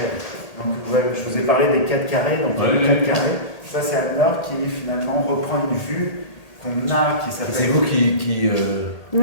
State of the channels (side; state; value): right; late; 1.8 ms